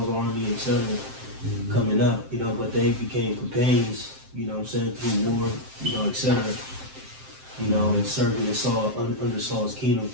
army, etc. Coming up, but they became companions. You know what I'm saying, through war, etc. And serving in Saul under Saul's kingdom.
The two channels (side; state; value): left; late; 7.6 ms